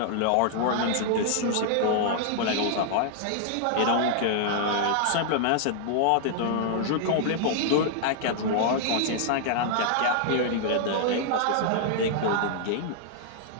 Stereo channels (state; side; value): different; both; correlation -0.01